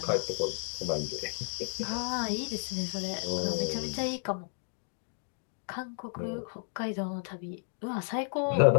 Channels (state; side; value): silent; right; digital silence